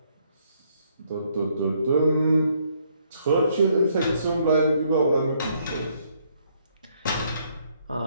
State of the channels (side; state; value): both; inverted; correlation -0.70